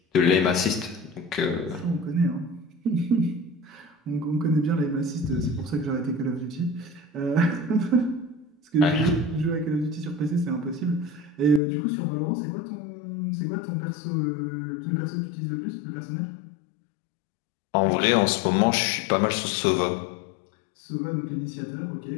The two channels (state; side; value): drops out; right; at 11.6 s